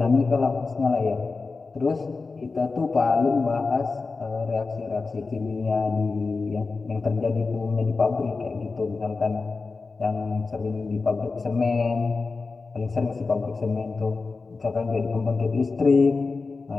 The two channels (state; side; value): quieter; right; 4.1 dB